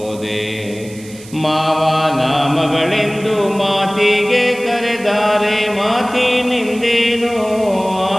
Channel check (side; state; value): right; noise; hiss, 20 dB below the sound